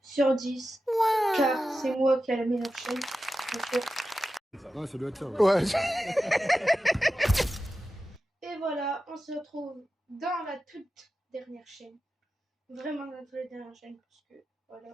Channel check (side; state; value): both; normal; correlation 0.92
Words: car c'est moi qui ai la meilleure chaîne. Ouais, ça doit être ça. Ouais. Et voilà, on se retrouve dans la toute dernière chaîne. Vraiment dans la toute dernière chaîne, parce que